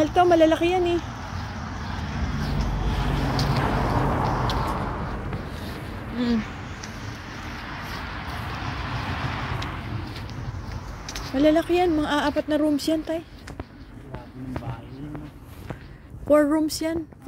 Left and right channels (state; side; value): identical; both; correlation 1.00